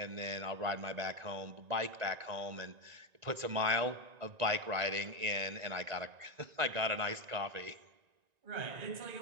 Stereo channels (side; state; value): left; late; 1.9 ms